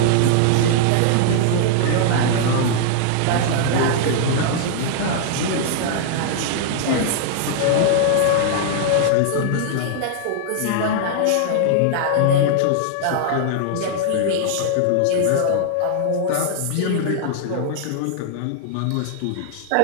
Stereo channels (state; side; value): different; both; correlation -0.01